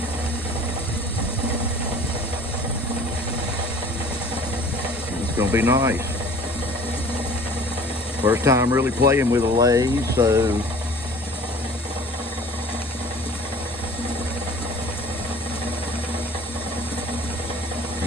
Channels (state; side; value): normal; both; correlation 0.48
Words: It's gonna be nice. First time really playing with a lathe, so